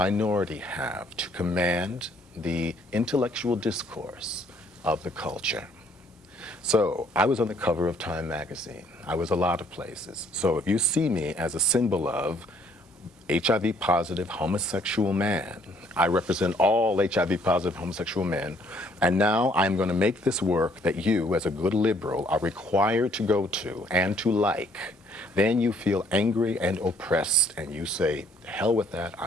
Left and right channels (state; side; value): normal; both; correlation 0.63